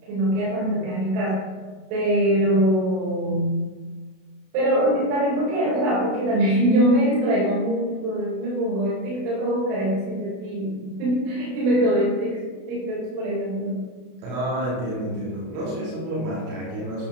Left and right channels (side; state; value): left; late; 32 ms